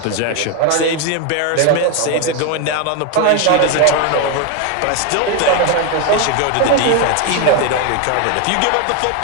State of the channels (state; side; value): different; both; correlation 0.01